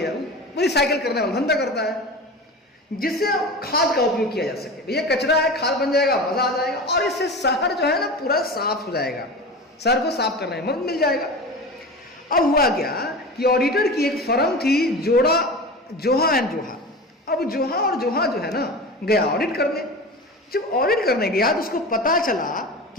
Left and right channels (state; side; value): normal; both; correlation 0.31